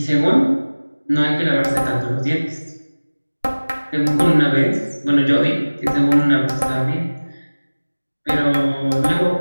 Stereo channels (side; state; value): both; inverted; correlation -1.00